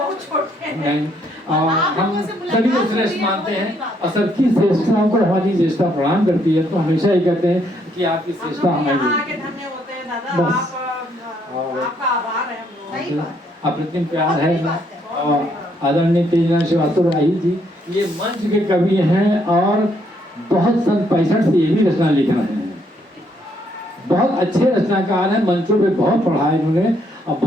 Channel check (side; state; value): both; normal; correlation 0.71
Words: छोटे हैं। और हम सभी को श्रेष्ठ मानते हैं, और सबकी श्रेष्ठताओं को हमारी श्रेष्ठता प्रणाम करती है। तो हमेशा ही कहते हैं कि आपकी श्रेष्ठता हमारी धन्य होते हैं दादा, बस। आपका आभार है हम लोग। अप्रतिम प्यार है। और आदरणीय तेजना श्रीवास्तव राही जी, ये मंच के कवि हैं, और बहुत सन 65 से ये भी रचना लिख रहे हैं। बहुत अच्छे रचनाकार हैं, मंचों पे बहुत पढ़ा है इन्होंने, और